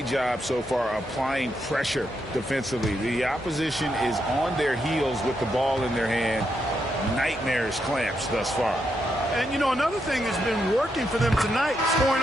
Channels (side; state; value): both; normal; correlation 0.81